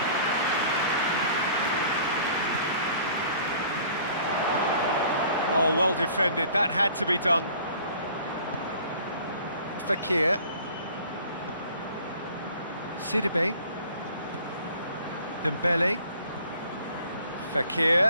Oh, well defended. That had to be done. Fekir. Sidibe. Dembele.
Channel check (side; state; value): both; inverted; correlation -0.52